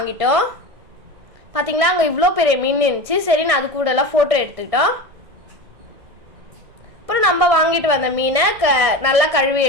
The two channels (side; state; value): left; late; 1.6 ms